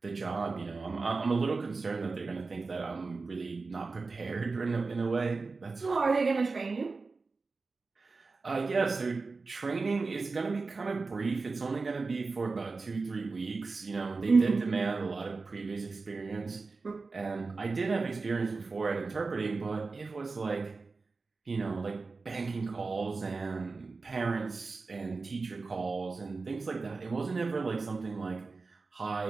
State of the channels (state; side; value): quieter; left; 4.0 dB